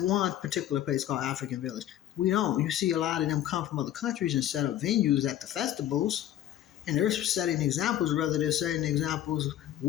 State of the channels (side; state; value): right; quieter; 12.1 dB